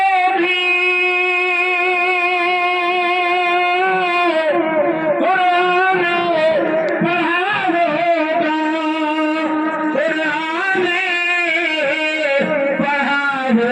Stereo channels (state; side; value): identical; both; correlation 1.00